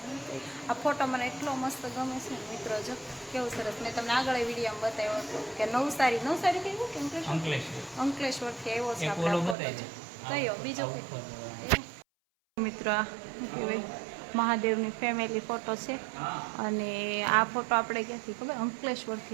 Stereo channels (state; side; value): drops out; left; at 9.6 s